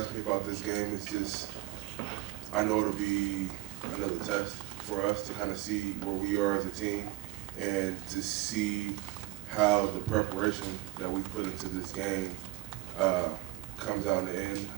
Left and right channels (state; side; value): quieter; left; 18.7 dB